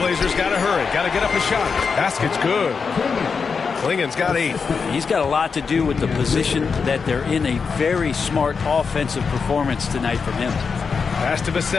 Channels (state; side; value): quieter; right; 5.4 dB